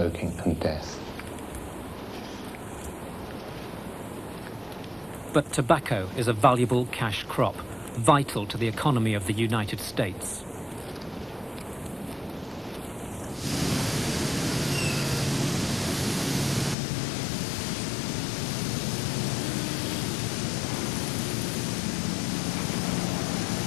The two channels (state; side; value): drops out; right; at 16.8 s